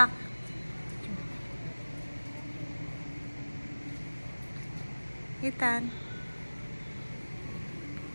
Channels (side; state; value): both; inverted; correlation -1.00